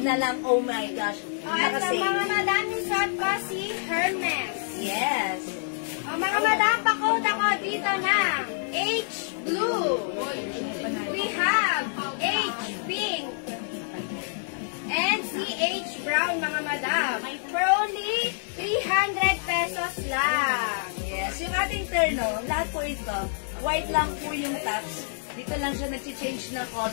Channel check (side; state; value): right; silent; digital silence